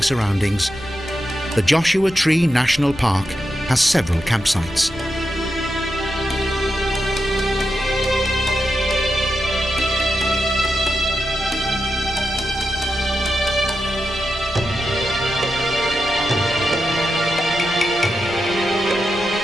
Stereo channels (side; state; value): left; noise; rumble, 17 dB below the sound